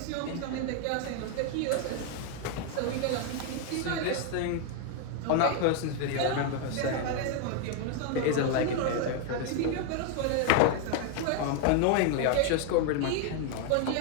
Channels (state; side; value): different; both; correlation 0.00